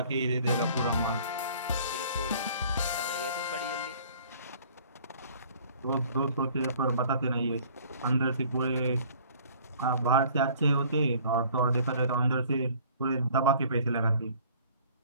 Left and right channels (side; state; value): both; inverted; correlation -0.53